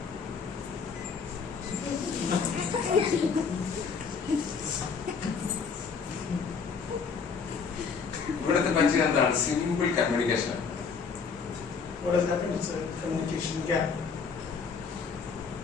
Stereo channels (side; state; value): right; quieter; 5.6 dB